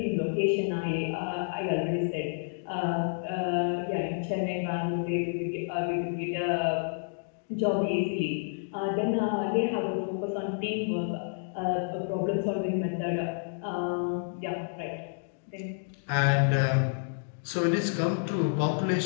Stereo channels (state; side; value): silent; right; digital silence